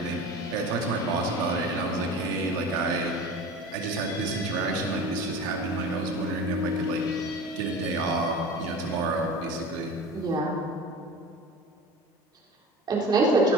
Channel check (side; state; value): both; normal; correlation 0.35